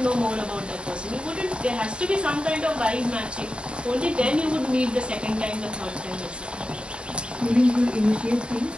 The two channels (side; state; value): left; late; 0.053 ms